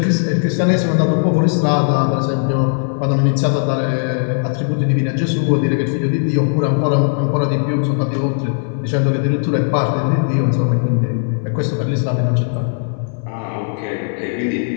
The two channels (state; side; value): silent; right; 58 dB below the other